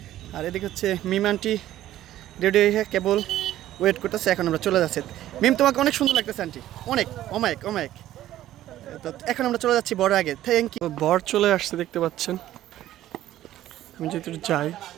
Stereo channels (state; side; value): quieter; left; 13.5 dB